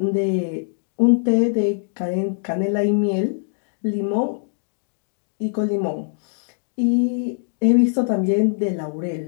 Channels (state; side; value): silent; right; digital silence